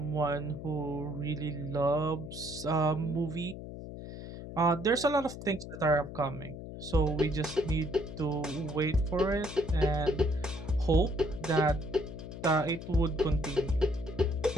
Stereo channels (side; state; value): left; noise; hum, 10 dB below the sound